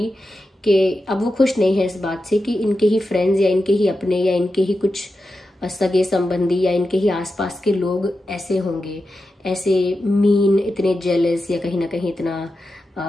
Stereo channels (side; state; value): both; normal; correlation 0.90